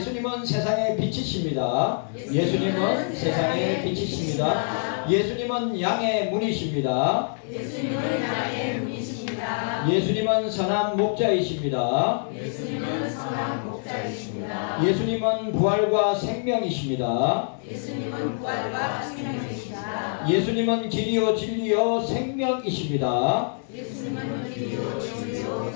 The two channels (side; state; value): right; silent; 61 dB below the other